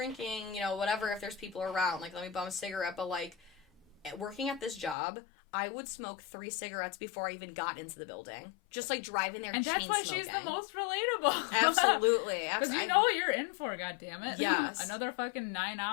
you know, whatever, if there's people around, like, let me bum a cigarette. But, like, working at this job, I would smoke 3 cigarettes before I even got into the building. Just, like, driving there and chain smoking. And that's why she's the most relatable. Absolutely. Because you know what you're in for, goddammit. Yes. Another fucking 9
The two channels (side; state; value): right; drops out; at 5.0 s